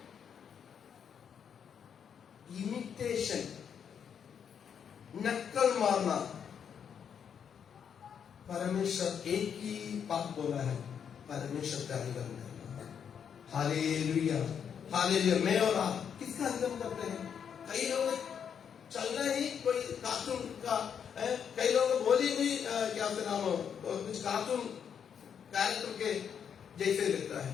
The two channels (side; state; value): right; quieter; 7.7 dB